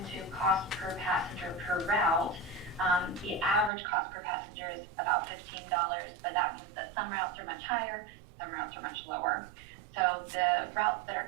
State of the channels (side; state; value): left; drops out; at 3.7 s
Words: cost per passenger per route. The average cost per passenger is about $15, but that means that some routes are much higher, some routes are much lower. So the routes that